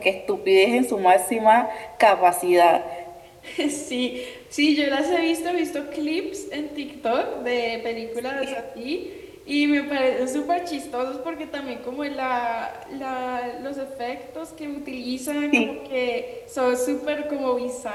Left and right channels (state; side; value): identical; both; correlation 1.00